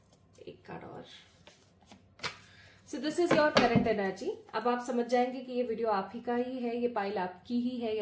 एक कार्ड और। So this is your current energy. अब आप समझ जाएंगे कि ये वीडियो आप ही का ही है, ये पाइल आपकी ही है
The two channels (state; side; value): identical; both; correlation 1.00